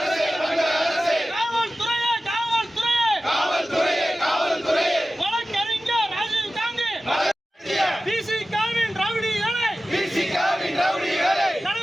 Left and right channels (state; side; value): normal; both; correlation 0.95